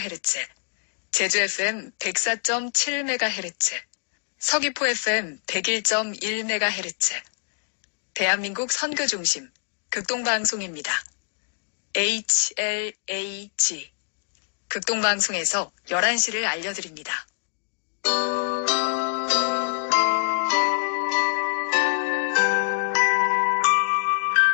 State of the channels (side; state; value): right; silent; digital silence